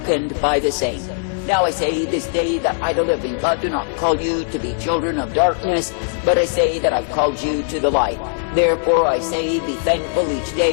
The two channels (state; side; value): silent; right; digital silence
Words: by the same. Now I say this day that I, the living God, do not call you to be children of darkness, but I say that I've called you to the light. Therefore I say, be thankful each